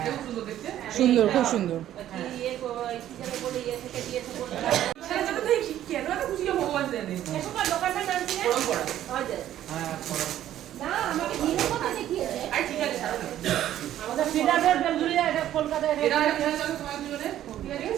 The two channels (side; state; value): left; quieter; 12.1 dB